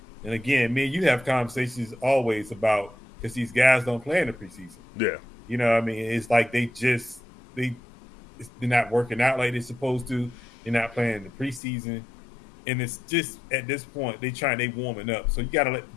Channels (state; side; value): drops out; right; at 11.6 s